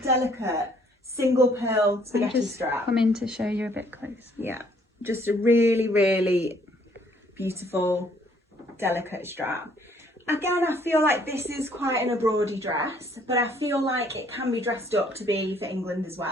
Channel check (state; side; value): normal; both; correlation 0.63